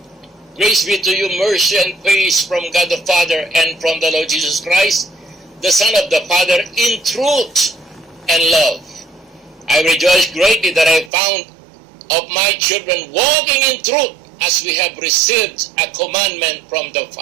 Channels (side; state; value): left; drops out; at 11.1 s